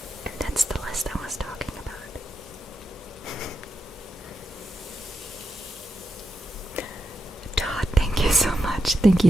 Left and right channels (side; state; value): both; normal; correlation 0.87